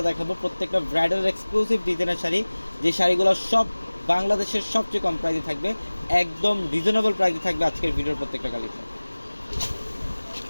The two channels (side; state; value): both; inverted; correlation -1.00